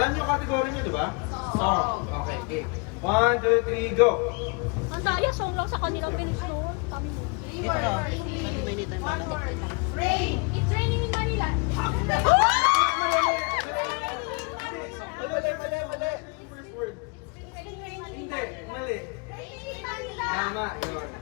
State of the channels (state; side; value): quieter; right; 32.3 dB